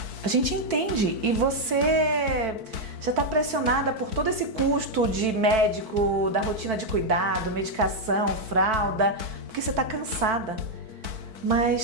a gente entende e você já está pressionada por todo esse custo de médico, da rotina de cuidado, medicação, fralda, porque você está cansada.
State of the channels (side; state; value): left; late; 4.5 ms